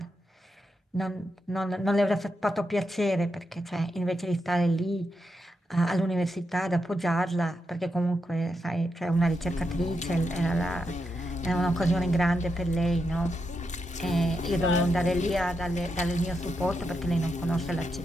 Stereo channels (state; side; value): normal; both; correlation 0.84